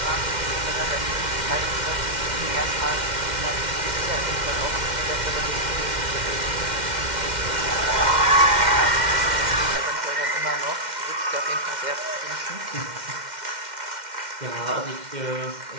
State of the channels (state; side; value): late; left; 2.1 ms